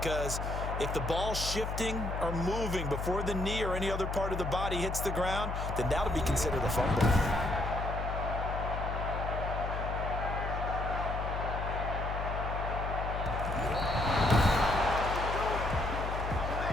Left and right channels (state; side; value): noise; left; hum, 3 dB below the sound